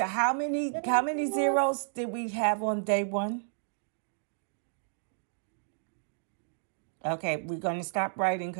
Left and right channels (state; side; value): silent; left; digital silence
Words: how many zeros did we have on day 1? Okay, we're going to stop writing